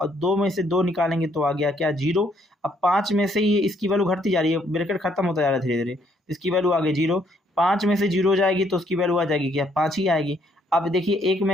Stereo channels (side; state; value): both; normal; correlation 0.69